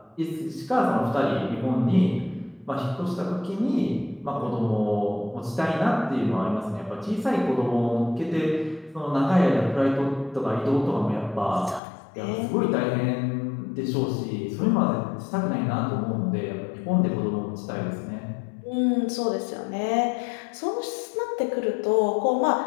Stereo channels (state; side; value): drops out; right; at 11.8 s